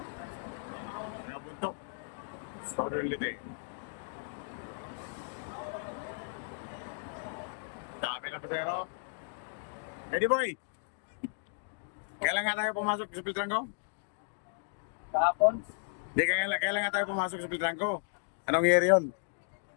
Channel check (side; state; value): right; silent; digital silence